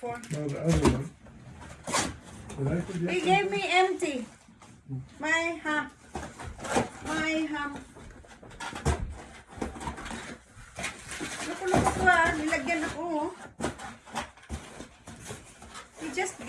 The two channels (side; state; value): both; identical; correlation 1.00